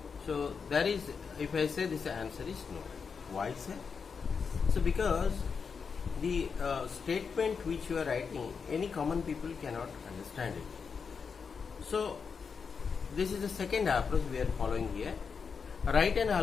So there is, if I say this answer is no. Why, sir? So because the statement which you are writing, any common people cannot understand it. So this is the second approach we are following here. Write an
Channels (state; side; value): quieter; right; 5.8 dB